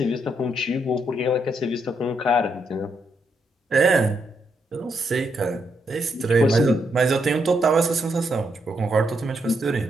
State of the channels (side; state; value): both; normal; correlation 0.78